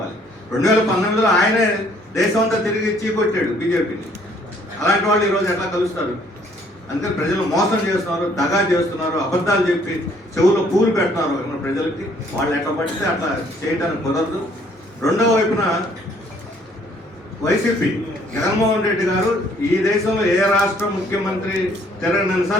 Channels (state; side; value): normal; both; correlation 0.62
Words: 2019లో ఆయనే దేశం అంతా తిరిగి చీకొట్టాడు బీజేపీని. అలాంటి వాళ్ళు ఈరోజు ఎట్లా కలుస్తారు? అందుకని ప్రజలు మోసం చేస్తున్నారు, దగా చేస్తున్నారు, అబద్ధాలు చెప్పి చెవుల్లో పూలు పెడుతున్నారు మన ప్రజలకి. వాళ్ళు ఎట్లా పడితే అట్లా చేయడానికి కుదరదు. రెండవ వైపున వైసీపీ జగన్మోహన్ రెడ్డి గారు ఈ దేశంలో ఏ రాష్ట్ర ముఖ్యమంత్రి